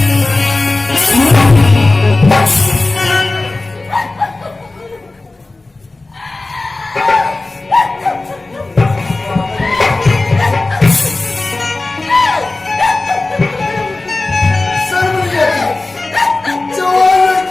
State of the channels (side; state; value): right; quieter; 3.2 dB